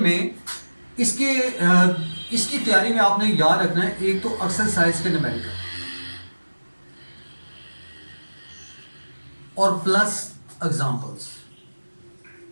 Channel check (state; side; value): inverted; both; correlation -1.00